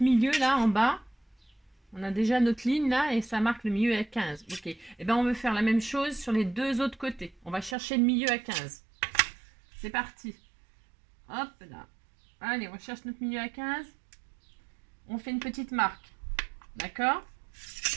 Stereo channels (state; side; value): drops out; left; at 7.8 s